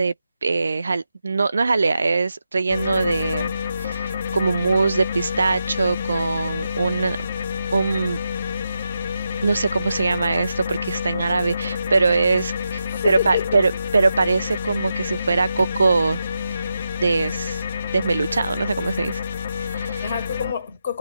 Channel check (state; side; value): inverted; both; correlation -0.87